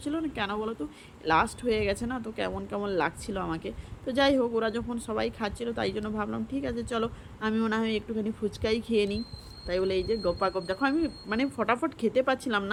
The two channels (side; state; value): both; identical; correlation 1.00